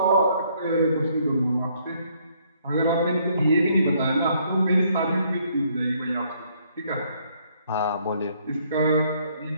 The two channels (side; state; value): both; inverted; correlation -0.67